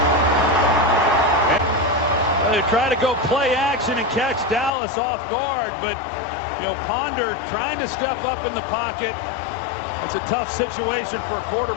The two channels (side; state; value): right; drops out; at 4.7 s